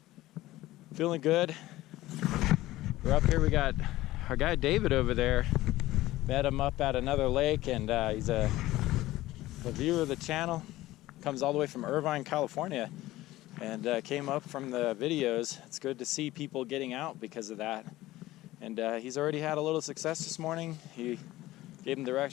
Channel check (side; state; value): right; quieter; 16.8 dB